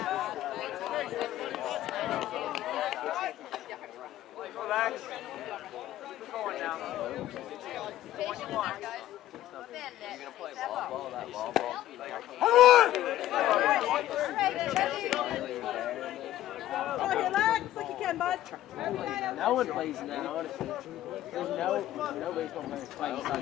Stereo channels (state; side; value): quieter; right; 13.7 dB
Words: Relax. Keep going now. 21. You're gonna play ball ball, that ball ball. Relax like you can, bud. No one plays in that, honestly. There's no baseball players playing